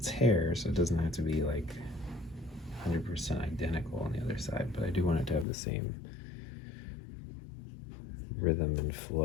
hair, so it doesn't have to be like 100% identical on the other side, but I do want it to have the same rhythm and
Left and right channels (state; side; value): drops out; right; at 5.5 s